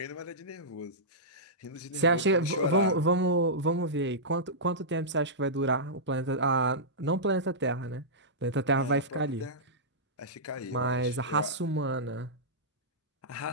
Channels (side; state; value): both; normal; correlation -0.14